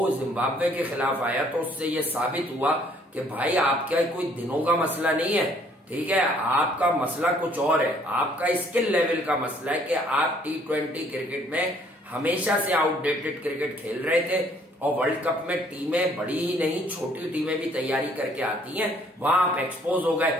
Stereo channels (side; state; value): both; normal; correlation 0.62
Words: जिम्बाब्वे के खिलाफ आया, तो उससे ये साबित हुआ कि भाई आपका कोई दिनों का मसला नहीं है, ठीक है, आपका मसला कुछ और है। आपका स्किल लेवल का मसला है कि आप T20 क्रिकेट में हमेशा से आउटडेटेड क्रिकेट खेल रहे थे और वर्ल्ड कप में टीमें बड़ी ही नहीं छोटी टीमें भी तैयारी करके आती हैं, वहां आप एक्सपोज हो गए।